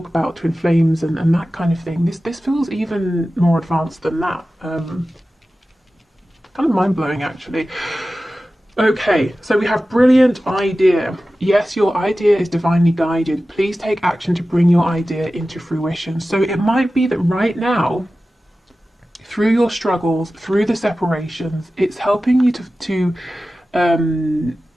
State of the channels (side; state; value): both; normal; correlation 0.95